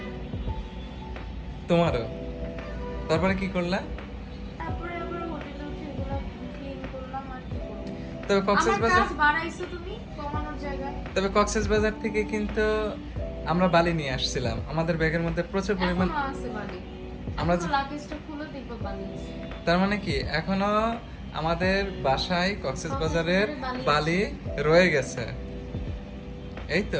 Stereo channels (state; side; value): identical; both; correlation 1.00